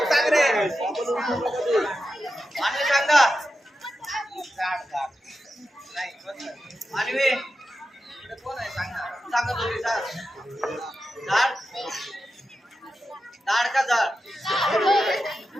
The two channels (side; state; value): both; normal; correlation 0.90